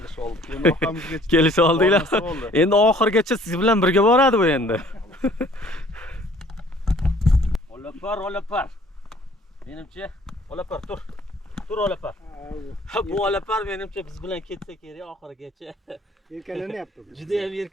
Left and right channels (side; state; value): both; normal; correlation 0.56